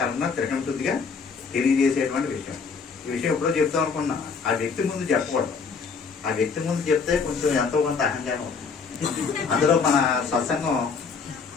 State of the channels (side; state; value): right; quieter; 5.4 dB